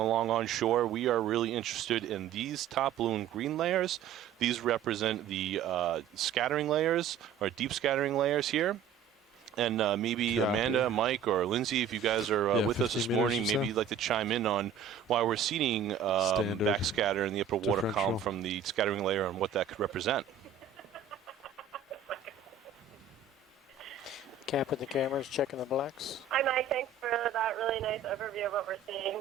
on shore, we are really interested in these top blue and green layers. These represent the scattering layers, or deep scattering layers here. And maybe Amanda, Mike, or Lindsay, if you guys are with us this morning, maybe you'd like to chime in on why we're seeing backscatter in the upper water column from the scattering layer and what that could represent. Capping the cameras, checking the blacks. Hi, Mike. Thanks for that really nice overview of what we're seeing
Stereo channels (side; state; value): left; quieter; 7.1 dB